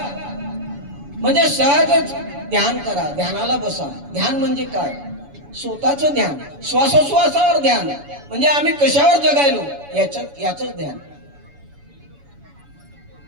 म्हणजे सहजच ध्यान करा, ध्यानाला बसा। ध्यान म्हणजे काय? स्वतःचं ध्यान, श्वासोश्वासावर ध्यान। म्हणजे आम्ही कशावर जगायलो याच ध्यान।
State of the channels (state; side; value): late; left; 7.0 ms